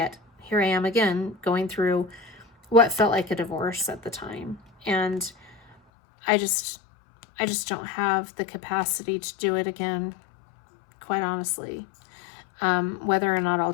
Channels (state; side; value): drops out; right; at 5.8 s